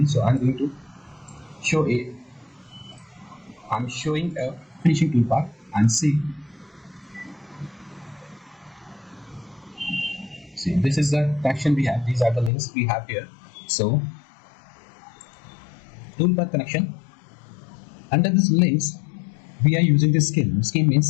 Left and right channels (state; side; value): drops out; right; at 12.5 s